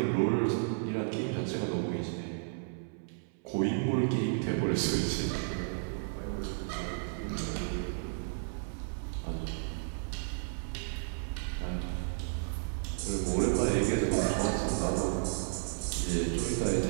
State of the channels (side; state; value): left; silent; 55 dB below the other